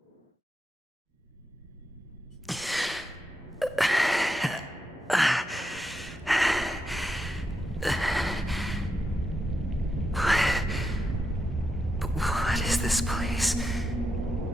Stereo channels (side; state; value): both; normal; correlation 0.85